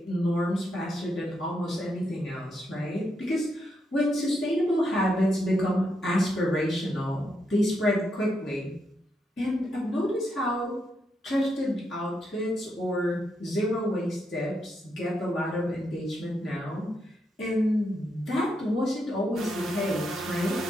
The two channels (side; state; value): both; normal; correlation 0.81